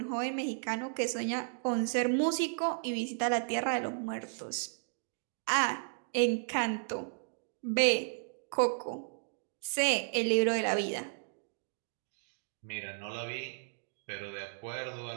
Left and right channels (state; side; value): silent; left; digital silence